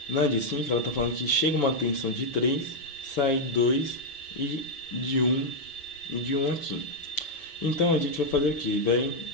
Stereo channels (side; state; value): right; late; 5.7 ms